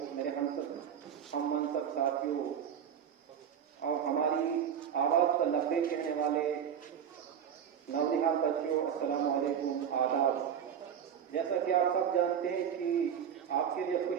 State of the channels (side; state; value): left; quieter; 8.4 dB